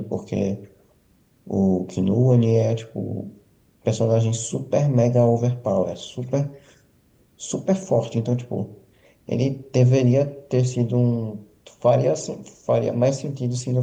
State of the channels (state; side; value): identical; both; correlation 1.00